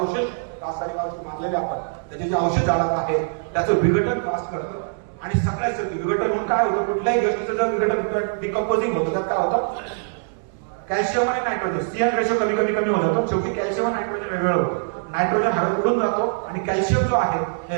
रासायनिक औषध मारलेले आपण त्याचे जे औषध झाडात आहे त्याचं विघटन फास्ट करतं. आणि सगळ्याच विघटन होऊन काय होतं, कुठल्याही गोष्टीचं जर विघटन डिकम्पोजिंग होतं तर काय होतं, कॅल्शियम आणि नायट्रोजन सीएन रेशो कमी होत जातो. शेवटी कॅल्शियम आणि नायट्रोजन वेगवेगळं होतं. नायट्रोजन हवेत उडून जातो आणि कॅल्शियम जो आहे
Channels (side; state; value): left; silent; digital silence